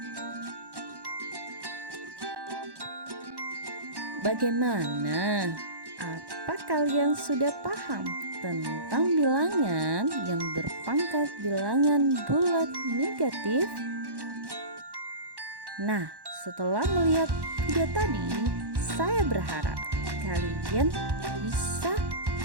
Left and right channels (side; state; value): left; late; 1.1 ms